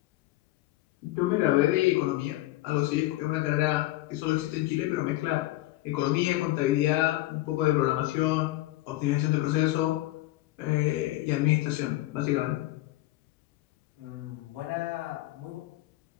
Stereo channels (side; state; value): right; quieter; 17.2 dB